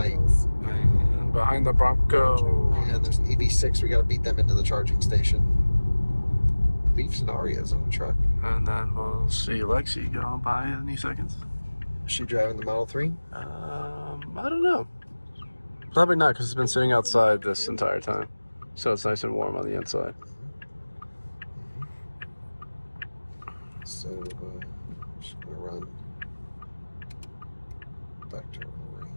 And behind the Bronco. And there's an EV6. We got to beat them into the charging station. Leafs and Arias on the truck. And then we'll see Lexi going by any seconds. Is she driving the Model 3? I don't know. Probably not, because it's been sitting outside this entire time. So it's nice and warm on the inside. So, just going to run back to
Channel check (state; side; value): inverted; both; correlation -1.00